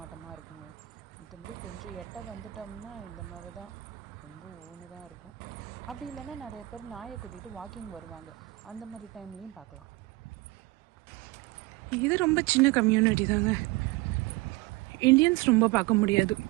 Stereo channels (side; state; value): left; quieter; 20.7 dB